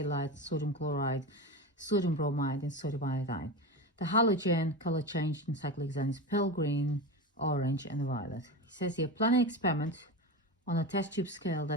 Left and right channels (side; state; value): both; normal; correlation 0.23